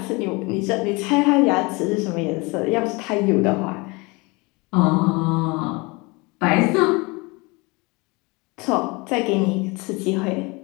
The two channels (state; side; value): quieter; right; 26.3 dB